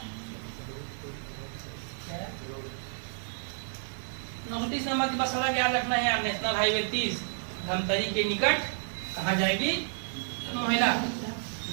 29 नंबर की बस सड़क याद रखना है, नेशनल हाईवे 30 धमतरी के निकट कहाँ जाएगी, महिला।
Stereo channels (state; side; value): silent; left; 57 dB below the other